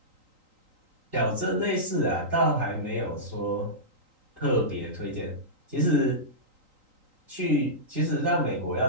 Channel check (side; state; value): left; late; 3.9 ms